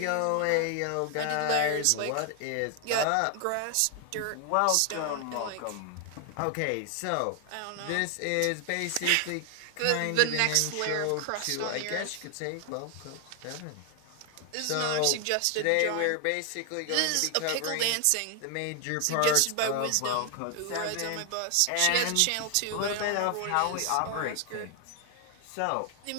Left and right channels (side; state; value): both; different; correlation 0.00